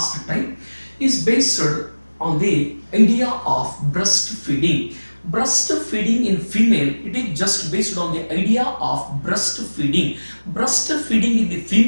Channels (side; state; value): both; inverted; correlation -1.00